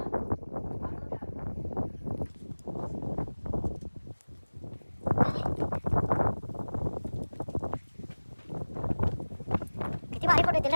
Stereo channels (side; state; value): both; inverted; correlation -1.00